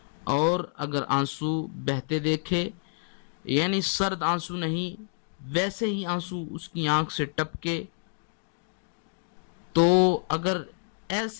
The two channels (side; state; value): right; silent; digital silence